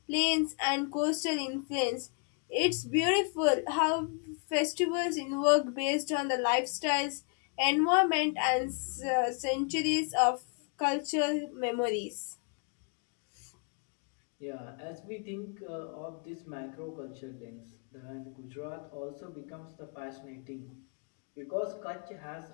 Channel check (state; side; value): quieter; right; 39.6 dB